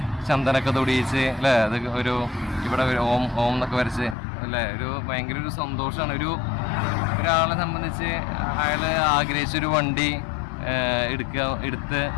ചന്ദനൊക്കെ തൊടിയിച്ച് അല്ലേ. അത് ഒരു ഇവിടെ ഓം എന്നൊക്കെ വരച്ച് അല്ലേ, ഒരു ഭയങ്കര ഒരു സന്തോഷമാണ്. ഒരാളെ സംബന്ധിച്ച് അയാൾ ആഗ്രഹിച്ചൊരു വണ്ടി എടുത്ത്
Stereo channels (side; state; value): right; drops out; at 4.2 s